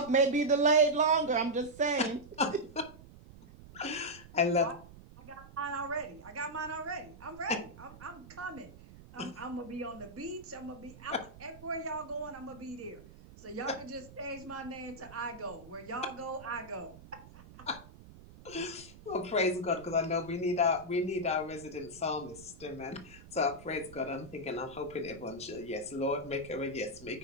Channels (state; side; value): noise; right; rumble, 18 dB below the sound